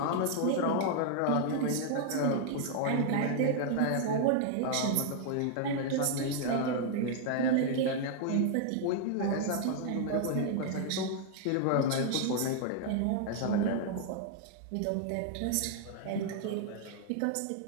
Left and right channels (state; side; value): different; both; correlation 0.00